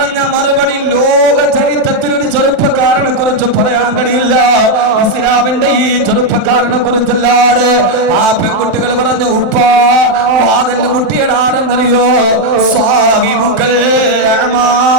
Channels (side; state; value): left; late; 27 ms